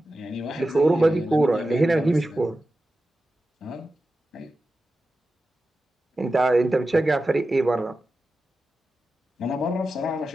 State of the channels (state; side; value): normal; both; correlation 0.93